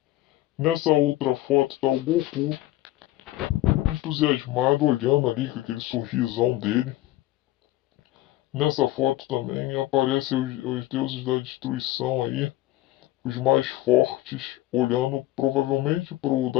Nessa outra foto tá o Goku entusiasmado olhando ali com aquele sorrisão dele. Nessa foto também aparecem os deuses da destruição aí, os mais fortes, olhando provavelmente pro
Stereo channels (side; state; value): right; quieter; 15.9 dB